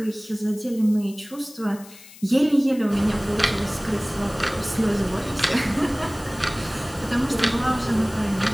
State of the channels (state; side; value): noise; left; hiss, 20 dB below the sound